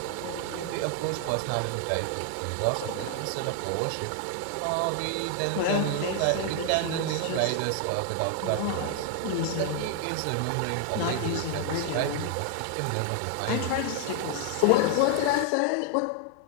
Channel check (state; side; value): different; both; correlation 0.00